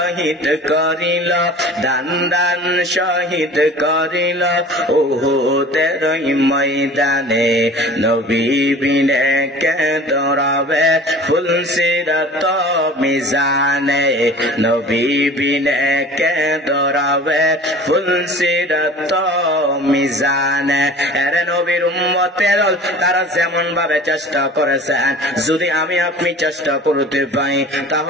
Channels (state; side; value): normal; both; correlation 0.42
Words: করিল, দান দান শহীদ করিল উহুদের ময়দানে, নবী বিনে কে দৌড়াবে ফুল সিরাত মিজানে, নবী বিনে কে দৌড়াবে ফুল সিরাত মিজানে। এরে নবীর উম্মতের তারা যেমন ভাবে চেষ্টা করেছেন, যদি আমি আপনি চেষ্টা করতে পাই